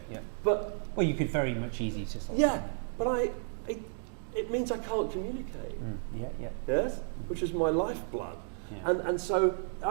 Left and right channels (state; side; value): silent; left; 56 dB below the other